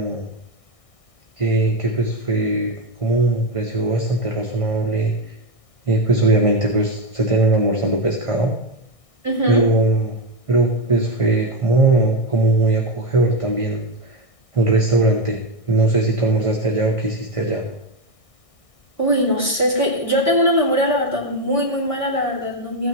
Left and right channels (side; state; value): right; late; 1.6 ms